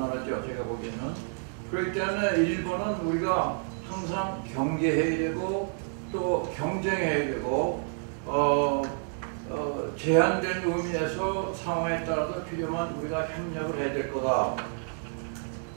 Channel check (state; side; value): silent; left; 58 dB below the other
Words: 제가 보기에는. 그렇기 때문에 일본은 우리가 항상 경계해야 되고 또 경쟁해야 되고 제한된 의미에서 상황에 따라서 필요한 우리가 협력을 해야 될 거다.